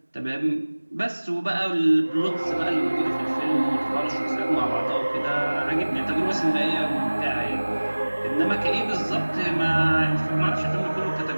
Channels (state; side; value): inverted; both; correlation -1.00